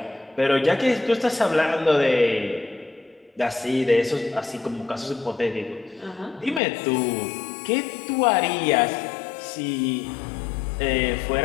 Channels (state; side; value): drops out; right; at 6.6 s